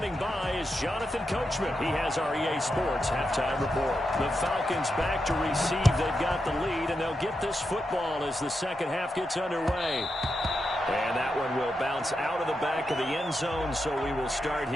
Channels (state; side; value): normal; both; correlation 0.87